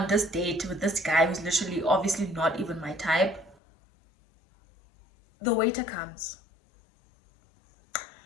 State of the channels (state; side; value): drops out; right; at 3.6 s